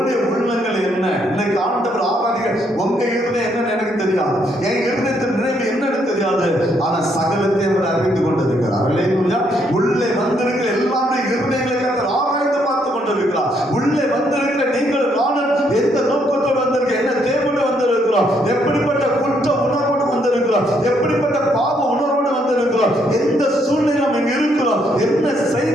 உள்ளங்கள் என்ன, இன்னைக்கு ஆண்டவர் ஆராதிக்க உங்க இருதயம் என்னன்னு எனக்கு தெரியாது, என் இருதயத்தின் நினைவு என்னன்னு தெரியாது, ஆனா சகலத்தையும் அவர் அறிந்து கொண்டிருக்கிறார். அல்லேலூயா. உள்ளே வந்திருக்கிற எல்லாருடைய இருதயங்களை கர்த்தர் ஆராய்ந்து பார்த்து கொண்டிருக்கிறார். உள்ளே வந்திருக்கிற நீங்கள் நானும் எந்த நோக்கத்தோடு வந்திருக்க, என்ன தேவையோடு வந்திருக்கிறோம், எப்படிப்பட்ட குற்ற உணர்வோடு வந்திருக்கிறோம், எப்படிப்பட்ட பாவ உணர்வோடு வந்திருக்கிறோம், எந்த சூழ்நிலை நம்ம இங்க இருக்கிறோம், என்ன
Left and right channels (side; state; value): both; normal; correlation 0.72